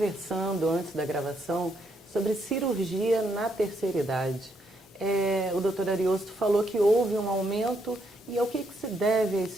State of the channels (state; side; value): normal; both; correlation 0.75